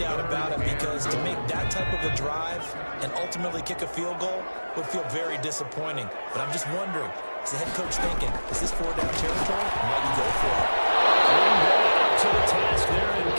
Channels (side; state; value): both; inverted; correlation -1.00